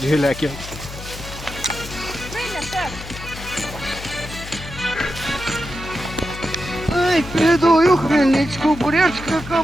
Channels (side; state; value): left; noise; hum, 12 dB below the sound